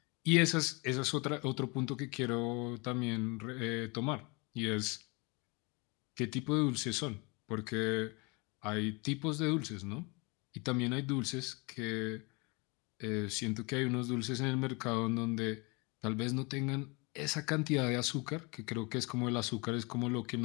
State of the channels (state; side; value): quieter; right; 28.8 dB